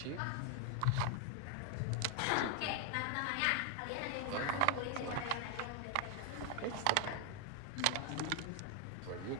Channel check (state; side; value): different; both; correlation 0.00